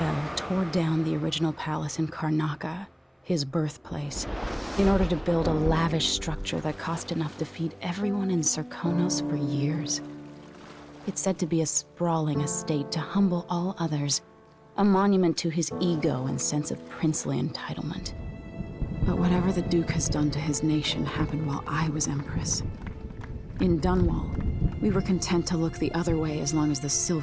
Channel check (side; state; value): both; identical; correlation 1.00